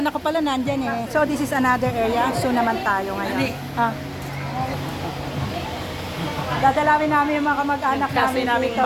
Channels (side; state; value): both; identical; correlation 1.00